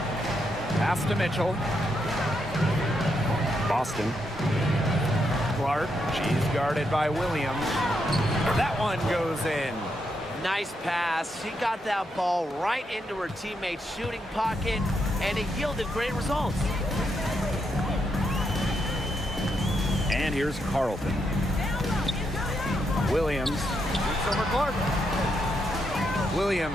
Pass to Mitchell. Boston. Clark. She's guarded by Williams. That one goes in. Nice pass. She got that ball right into her teammate's shooting pocket, and it yielded great results. And here's Carlton. Williams shoots over Clark.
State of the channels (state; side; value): normal; both; correlation 0.80